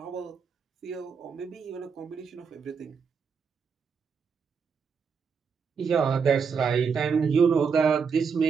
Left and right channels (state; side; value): quieter; left; 5.9 dB